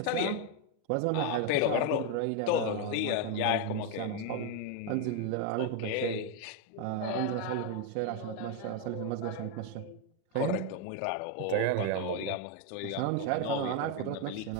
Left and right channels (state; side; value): different; both; correlation 0.01